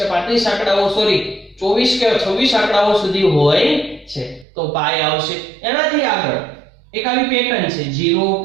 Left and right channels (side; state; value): left; drops out; at 4.5 s